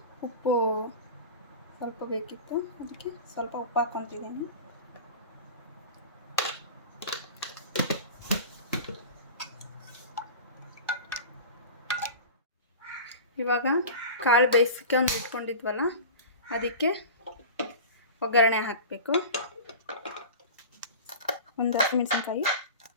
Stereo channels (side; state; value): both; inverted; correlation -0.34